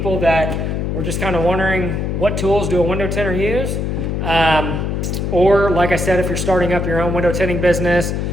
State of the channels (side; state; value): left; noise; hum, 1 dB below the sound